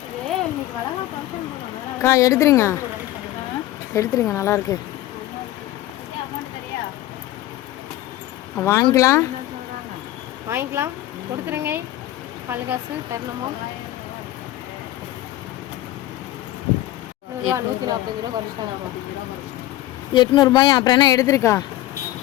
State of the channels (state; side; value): quieter; right; 15.3 dB